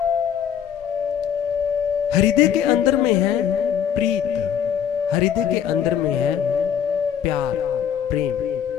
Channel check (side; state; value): right; quieter; 8.9 dB